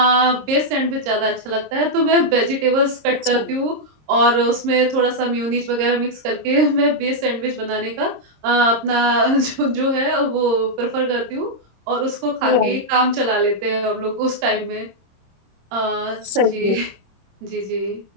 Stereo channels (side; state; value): left; late; 26 ms